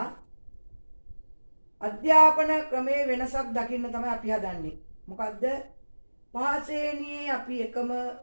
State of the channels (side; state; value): both; inverted; correlation -1.00